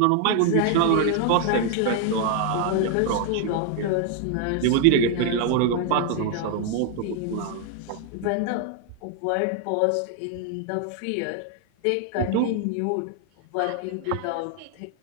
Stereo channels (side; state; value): both; different; correlation 0.00